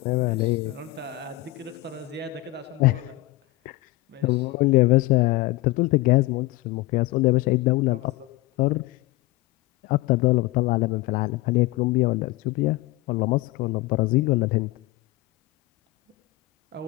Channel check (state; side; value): quieter; right; 19.0 dB